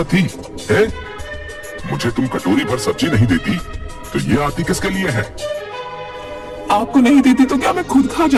थी? है? मुझे तुम कटोरी भर सब्जी नहीं देती तो ये आती किसके लिए है? आपको नहीं देती तो क्या मैं खुद खा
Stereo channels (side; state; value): both; identical; correlation 1.00